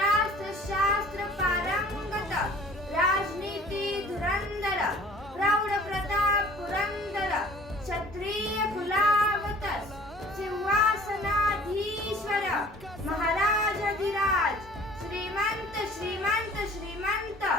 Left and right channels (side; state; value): both; normal; correlation 0.49